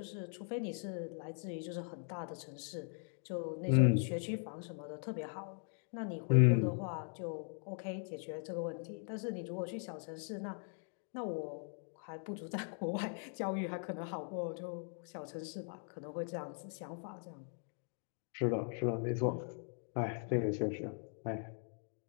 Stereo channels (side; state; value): right; silent; 51 dB below the other